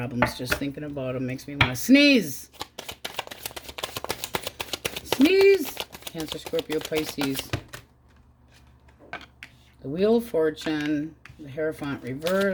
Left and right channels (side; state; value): both; identical; correlation 1.00